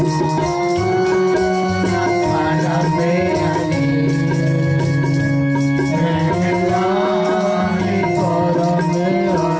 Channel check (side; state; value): both; identical; correlation 1.00